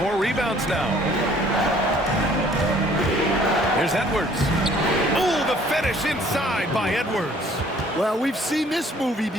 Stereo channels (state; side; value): normal; both; correlation 0.57